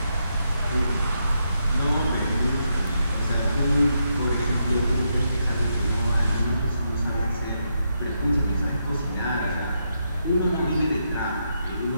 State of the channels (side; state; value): both; inverted; correlation -0.81